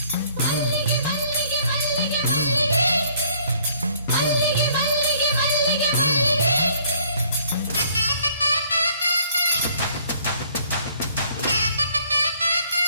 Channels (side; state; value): both; inverted; correlation -0.60